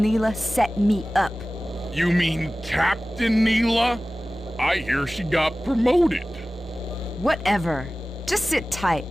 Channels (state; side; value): normal; both; correlation 0.97